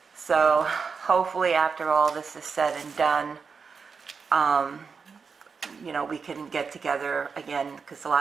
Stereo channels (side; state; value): left; quieter; 5.4 dB